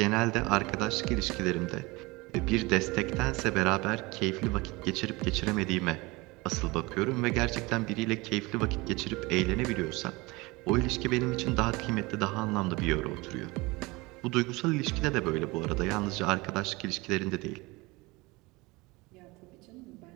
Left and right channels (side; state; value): left; quieter; 23.4 dB